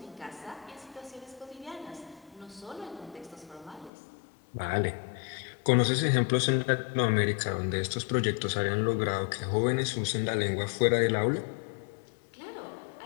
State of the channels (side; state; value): right; drops out; at 3.9 s